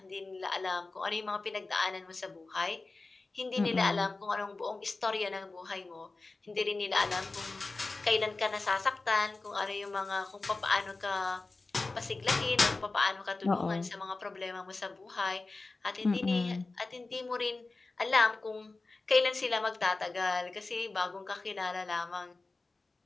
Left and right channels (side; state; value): right; quieter; 3.5 dB